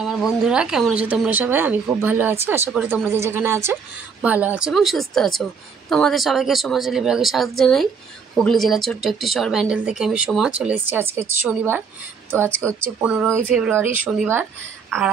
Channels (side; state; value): left; quieter; 5.8 dB